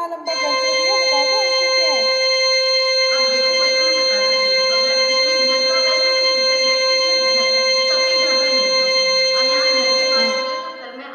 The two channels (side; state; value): both; identical; correlation 1.00